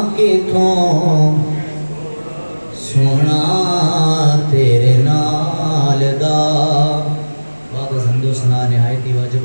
کتوں سونا تیرے نال دا۔ بعد از حمد و ثنا نہایت ہی واجب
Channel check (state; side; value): inverted; both; correlation -1.00